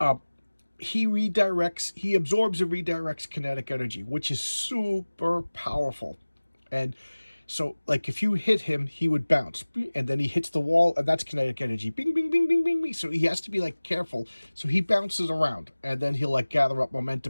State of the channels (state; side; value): inverted; both; correlation -1.00